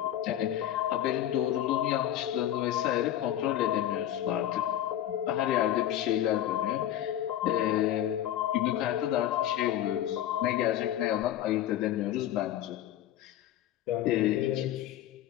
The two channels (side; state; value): right; quieter; 12.0 dB